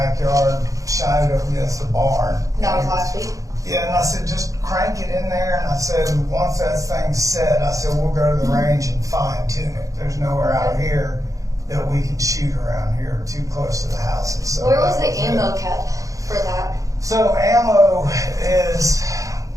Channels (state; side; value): late; left; 0.16 ms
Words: shined it up against the barn. That was last week? Yeah, and I said, just crank it in there, and I said, once that thing's set, I said, we'll go to the range and fine tune it. There's nowhere out here that we can shoot around here too close to the houses. So Where was the ammo kept for that? So ammo